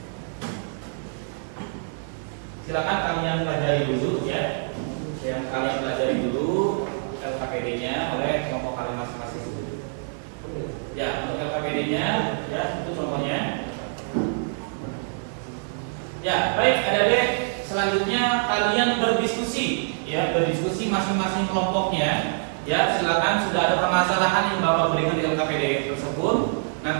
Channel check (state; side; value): silent; left; digital silence